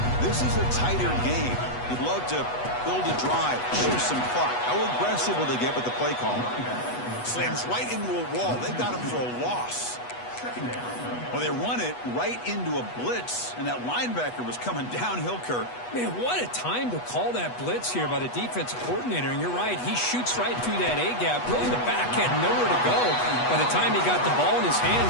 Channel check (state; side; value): late; right; 8.2 ms